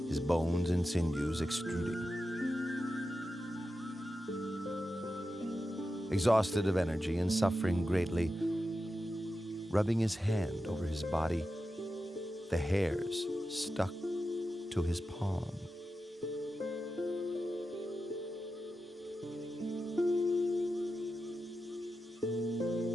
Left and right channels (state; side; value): normal; both; correlation 0.91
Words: his bones and sinews extruding. Exhausted of energy and suffering greatly, rubbing his hand over his body, the hairs stuck to his palm.